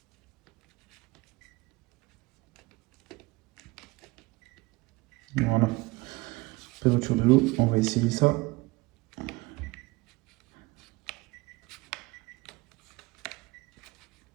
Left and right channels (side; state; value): left; quieter; 22.8 dB